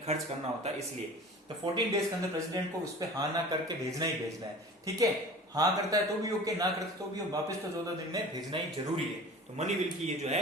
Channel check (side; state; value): both; normal; correlation 0.40